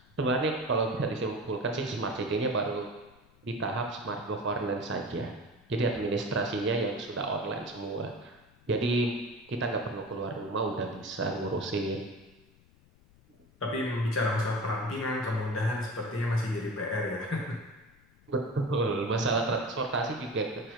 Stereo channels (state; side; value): noise; left; rumble, 28 dB below the sound